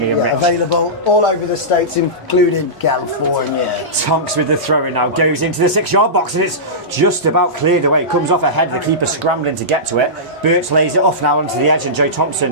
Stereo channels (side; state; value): both; normal; correlation -0.17